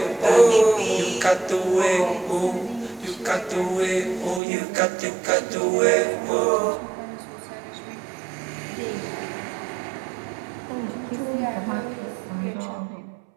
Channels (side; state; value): left; drops out; at 4.4 s